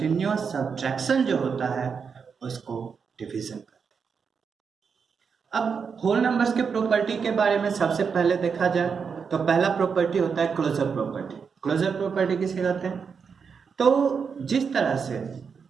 सब्ट्रैक्शन जो होता है उसको डिवीजन कहते हैं। अब होल नंबर्स के प्रॉपर्टी के बारे में सबसे पहले देखा जाए तो पहला प्रॉपर्टी होता है क्लोजर प्रॉपर्टी। क्लोजर प्रॉपर्टी किसे कहते हैं? तो जिस तरह से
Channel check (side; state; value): left; quieter; 6.0 dB